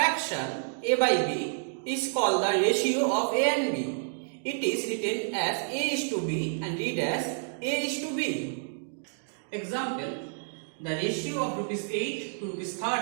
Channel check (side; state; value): left; silent; digital silence